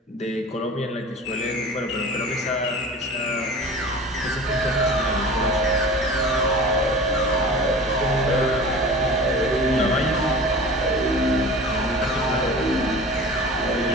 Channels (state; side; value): normal; both; correlation 0.38